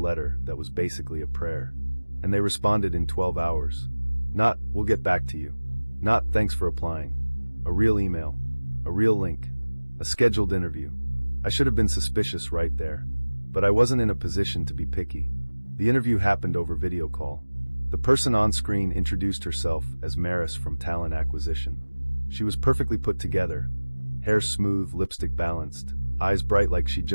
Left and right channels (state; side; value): inverted; both; correlation -1.00